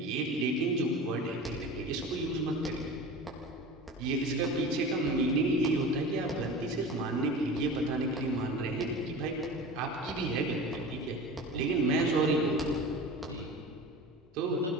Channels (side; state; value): both; normal; correlation 0.34